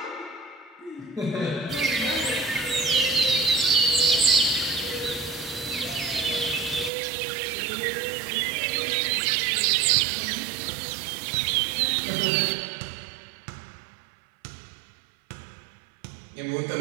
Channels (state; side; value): drops out; left; at 6.9 s